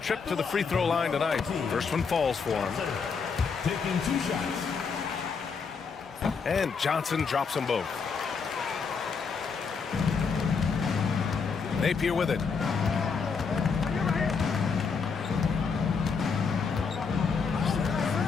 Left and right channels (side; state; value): right; quieter; 5.5 dB